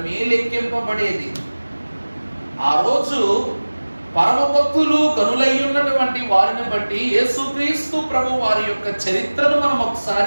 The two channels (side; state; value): both; inverted; correlation -1.00